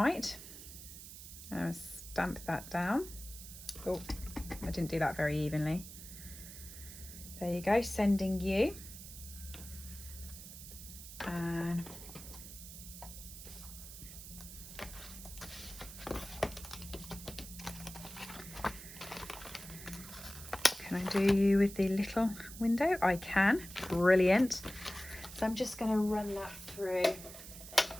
and stamp that down. Oh, I didn't do that very evenly. There you go, Sending You. And can I do you with the little window? I can. Brilliant. So I'm just going to run that through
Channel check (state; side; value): noise; right; hiss, 13 dB below the sound